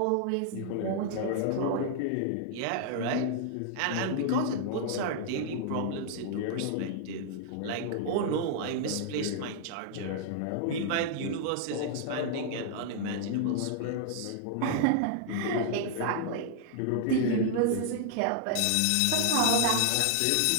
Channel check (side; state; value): both; different; correlation 0.00